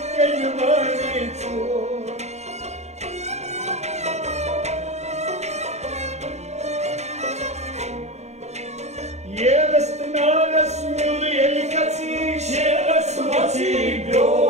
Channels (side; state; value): left; late; 0.32 ms